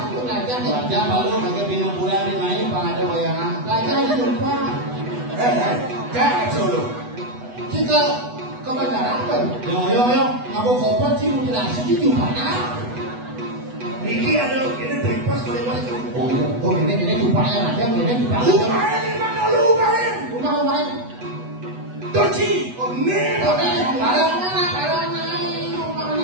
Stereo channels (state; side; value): late; left; 8.1 ms